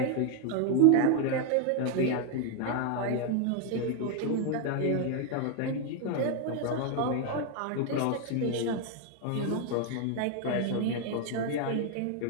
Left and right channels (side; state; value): both; different; correlation 0.01